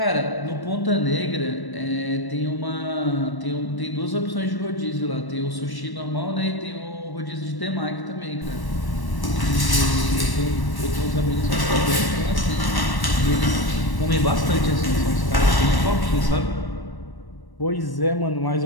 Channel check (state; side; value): late; right; 1.1 ms